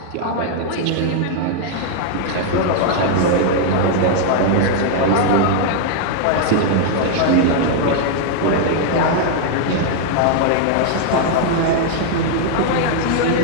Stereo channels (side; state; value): both; different; correlation 0.00